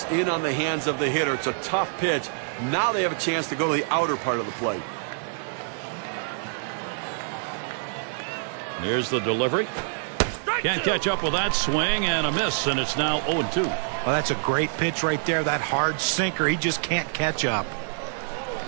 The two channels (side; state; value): left; silent; digital silence